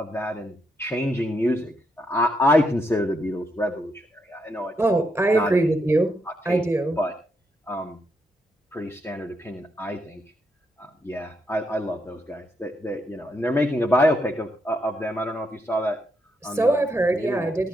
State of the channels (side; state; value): both; normal; correlation 0.79